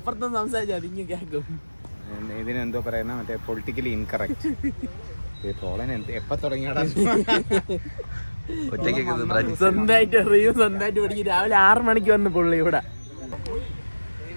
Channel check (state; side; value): inverted; both; correlation -1.00